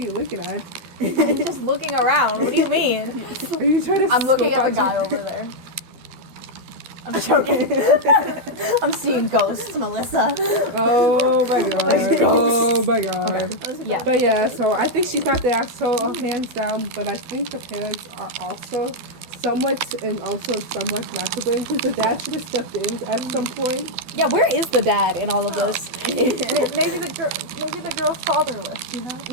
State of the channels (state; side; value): late; left; 12 ms